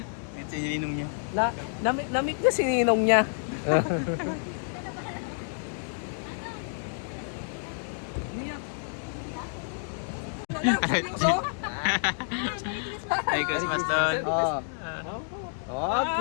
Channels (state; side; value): silent; right; digital silence